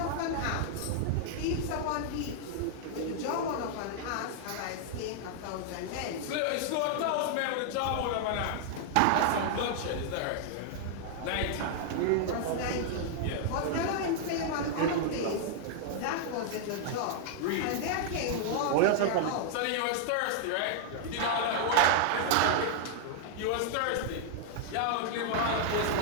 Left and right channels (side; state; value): both; different; correlation -0.01